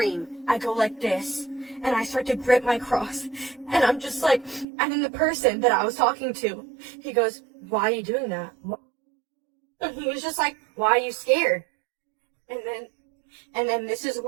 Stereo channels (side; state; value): left; drops out; at 4.7 s